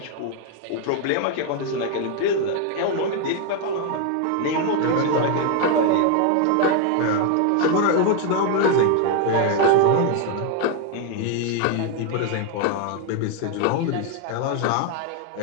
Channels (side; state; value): both; different; correlation 0.01